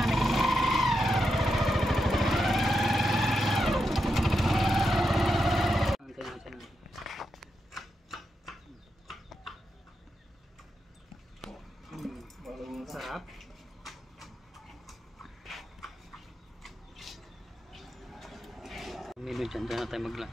nih. Sarap. Menu dyan na tayo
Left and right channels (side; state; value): both; normal; correlation 0.86